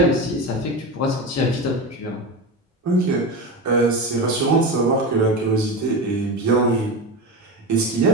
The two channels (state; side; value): normal; both; correlation 0.22